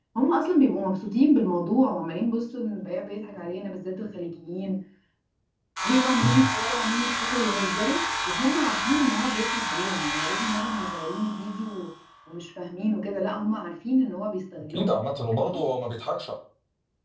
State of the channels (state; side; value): identical; both; correlation 1.00